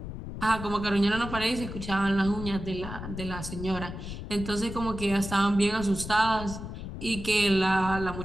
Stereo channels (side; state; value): left; noise; rumble, 9 dB below the sound